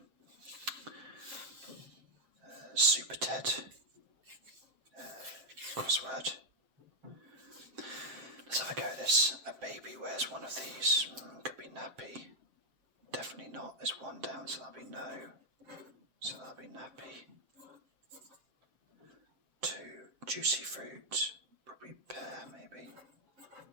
Super Ted crossword. Let's have a go at this. A baby wears one of these. Could be nappy. Definitely not. There's one down, so that'll be no. So that'll be nappy. 2, juicy fruit. Probably pear, maybe.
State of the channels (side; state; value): left; late; 7.6 ms